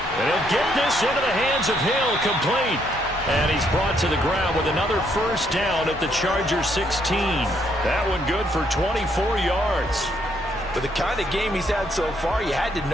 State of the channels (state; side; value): normal; both; correlation 0.72